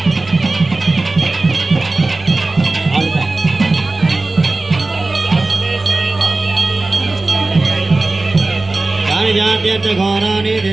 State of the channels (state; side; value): quieter; left; 3.2 dB